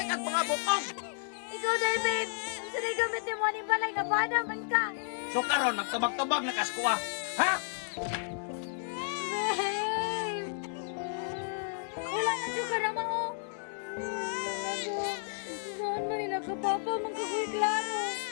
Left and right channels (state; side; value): silent; right; digital silence